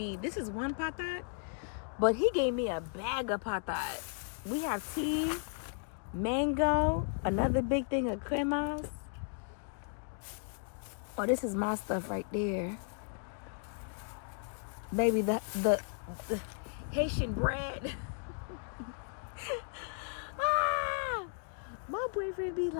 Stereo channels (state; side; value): silent; right; 54 dB below the other